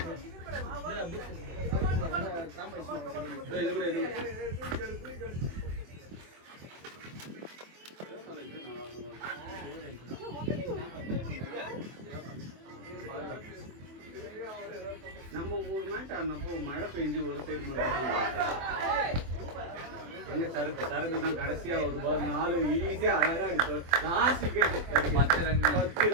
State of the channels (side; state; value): left; late; 24 ms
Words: நம்ம ஒரு மேட்ச் ஆடினப்போ மழை பெஞ்சு ஒரு சைடு மட்டும் எங்க சரக்கு தான் கடைசியா ஒரு பால் 4 ஈஸியா அழகா அடிப்பார். லாஸ்ட் விக்கெட் 10